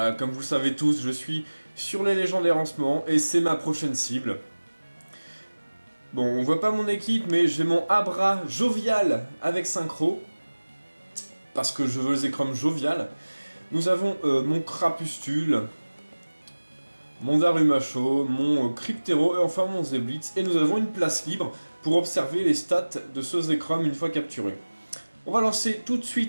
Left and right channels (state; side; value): inverted; both; correlation -1.00